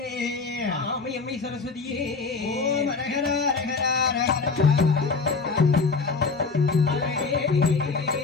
ஆமை அம்மை சரஸ்வதியே ஓம் அரகரா அரகரா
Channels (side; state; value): right; quieter; 4.5 dB